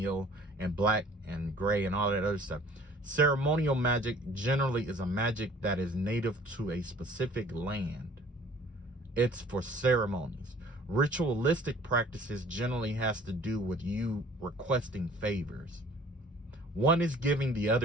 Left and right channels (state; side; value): normal; both; correlation 0.52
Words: and black and gray and all that other stuff. Ceremonial magic generally is a magic that is native to a specific land. It's for ceremonies. Ritualistic practices generally has to do with you requesting favors. One is giving, the